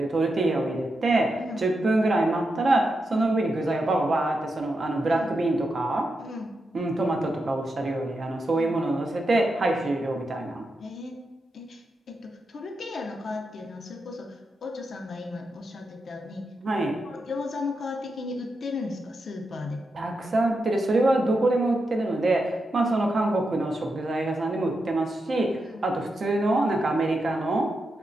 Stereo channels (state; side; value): normal; both; correlation 0.86